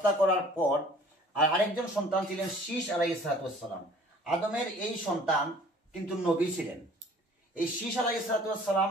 করার পর আর আরেকজন সন্তান ছিলেন শীশ আলাইহিস আদমের এই সন্তান কিন্তু নবী ছিলেন। এই শীশ আলাইহিস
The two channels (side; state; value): both; normal; correlation 0.51